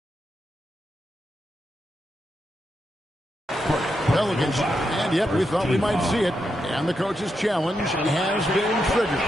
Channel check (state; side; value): normal; both; correlation 0.84